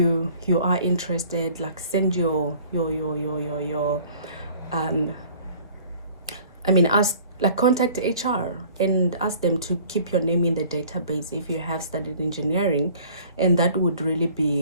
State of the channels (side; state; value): both; inverted; correlation -0.51